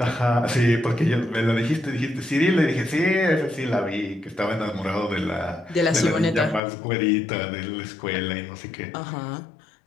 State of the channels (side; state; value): right; drops out; at 6.6 s